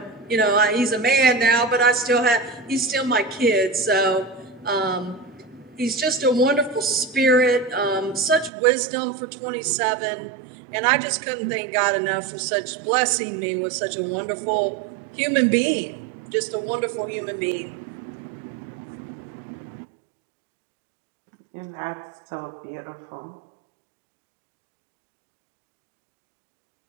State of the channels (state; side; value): drops out; left; at 8.5 s